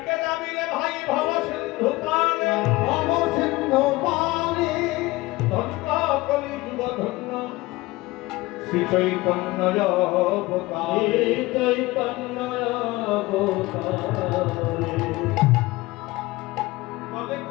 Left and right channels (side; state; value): right; quieter; 20.3 dB